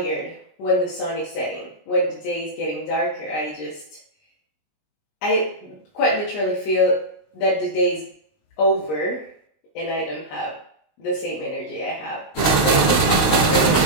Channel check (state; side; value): late; right; 19 ms